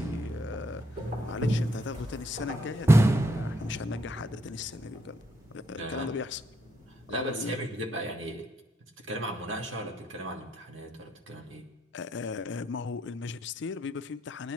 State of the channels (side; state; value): both; normal; correlation 0.74